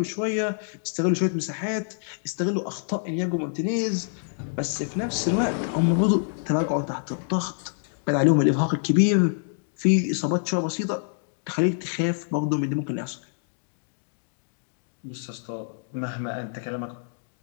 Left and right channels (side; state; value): right; silent; digital silence